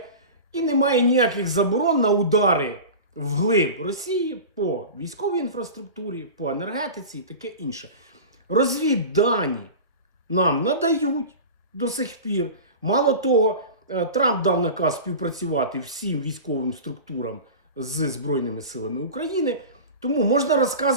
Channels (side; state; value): both; inverted; correlation -0.32